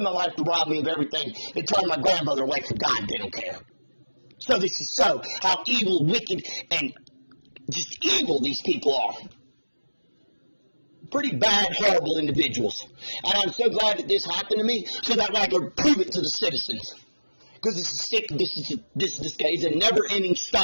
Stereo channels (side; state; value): both; inverted; correlation -1.00